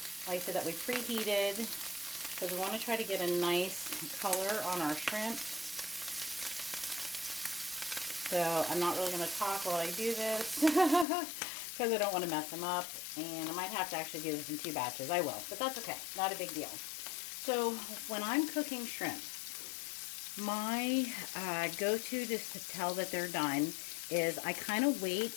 Like I said, that we preheated because we want to try to get a nice color on our shrimp. So I'm not really going to talk while I do this because I don't want to mess them up. And I might have to actually do this in 2 batches. I will, but that's okay. Not a big deal. So when I'm cooking shrimp, my go-to just to tell that they're done is I kind of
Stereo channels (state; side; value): drops out; right; at 11.1 s